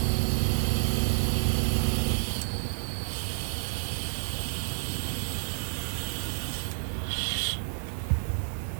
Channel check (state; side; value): silent; left; 58 dB below the other